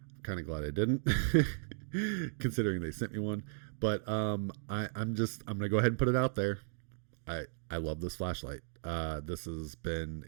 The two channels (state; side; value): silent; left; digital silence